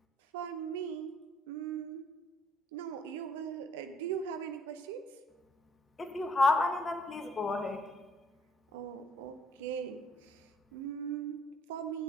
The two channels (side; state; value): both; normal; correlation 0.63